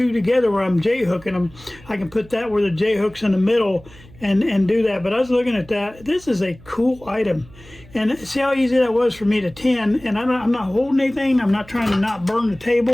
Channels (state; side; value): noise; right; hum, 23 dB below the sound